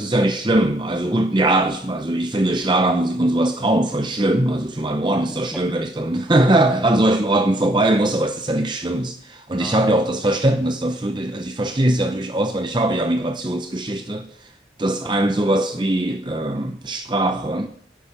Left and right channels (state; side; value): normal; both; correlation 0.68